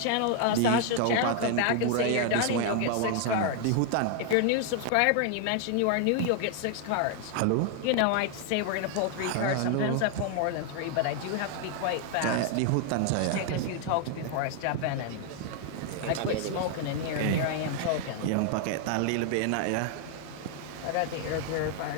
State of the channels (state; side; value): different; both; correlation 0.00